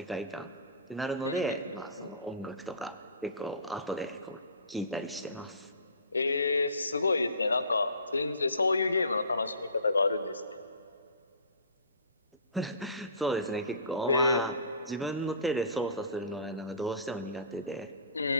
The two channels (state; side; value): inverted; both; correlation -0.39